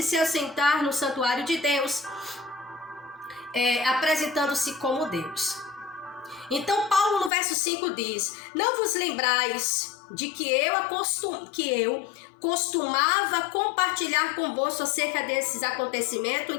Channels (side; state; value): right; drops out; at 7.3 s